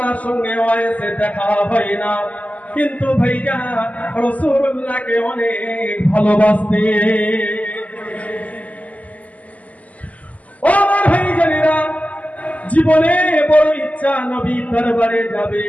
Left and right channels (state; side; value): late; right; 0.073 ms